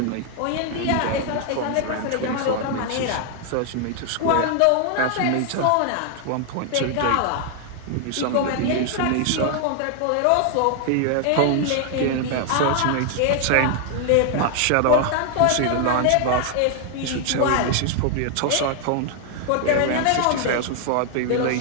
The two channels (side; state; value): both; different; correlation 0.00